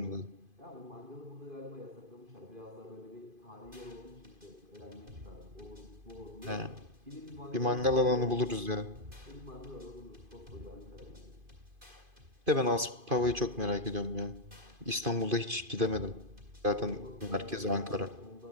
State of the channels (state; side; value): late; left; 2.5 ms